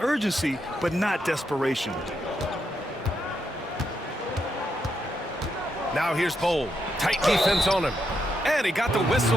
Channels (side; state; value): both; normal; correlation 0.81